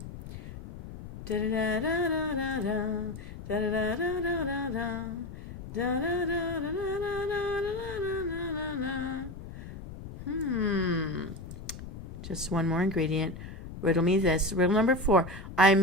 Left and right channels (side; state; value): left; noise; rumble, 12 dB below the sound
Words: Da-da-da-da-da-da. Da-da-da-da-da-da. Just one more ingredient. Riddle me this. Riddle number 4.